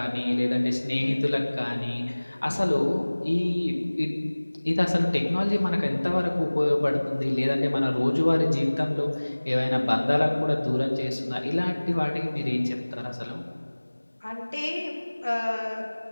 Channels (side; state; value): both; inverted; correlation -1.00